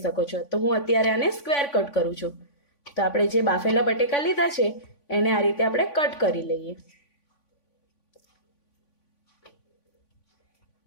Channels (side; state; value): right; late; 3.5 ms